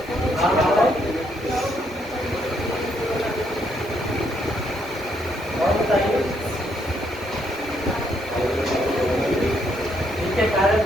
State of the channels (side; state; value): both; normal; correlation 0.73